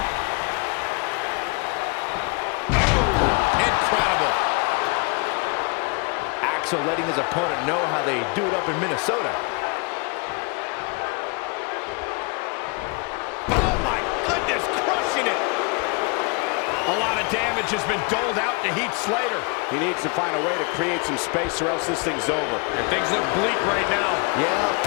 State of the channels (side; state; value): right; quieter; 32.1 dB